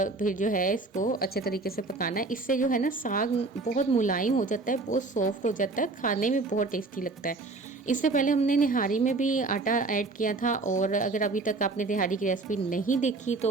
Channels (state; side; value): quieter; left; 3.5 dB